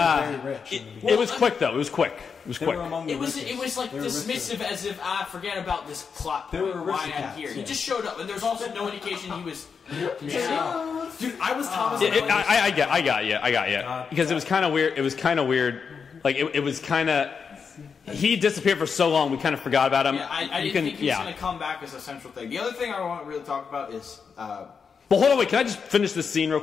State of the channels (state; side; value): quieter; right; 6.0 dB